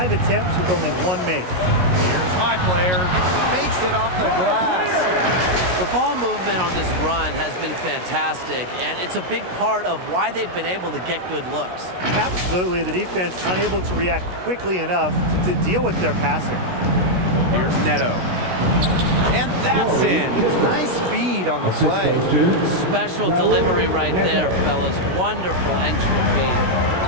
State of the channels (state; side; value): late; left; 16 ms